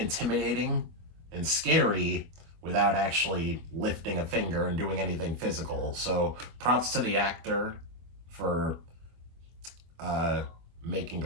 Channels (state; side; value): late; left; 24 ms